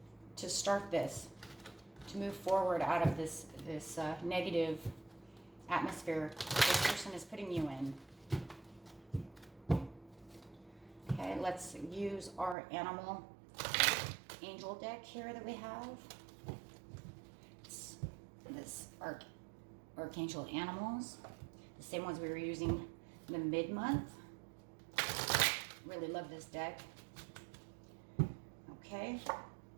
to start this, to move forward out of this negative atmosphere this person is putting you in. Okay, let's use our animal angel deck here that we have. It's this Archangel Animals, the same ones we were using in the mid-month. Really love this deck. Okay.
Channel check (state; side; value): drops out; left; at 12.6 s